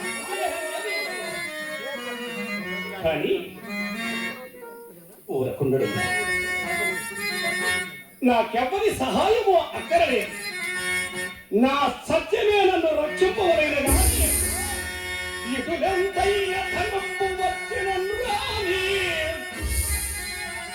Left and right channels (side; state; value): both; identical; correlation 1.00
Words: కానీ ఊరకుండడు. నాకెవ్వరి సహాయము అక్కరలేదు. నా సత్యమే నన్ను రక్షింపవలైన కానీ ఇటులెంతైన ధర్మము వచ్చినను రాని,